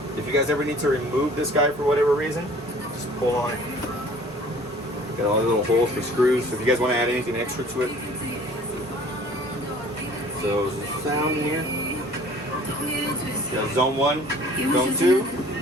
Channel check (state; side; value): normal; both; correlation 0.51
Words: If you guys ever need to remove this guy for whatever reason, just pull on it. Got all the little holes for screws. So if you guys want to add anything extra to it. So there's the sound in here. You got zone 1, zone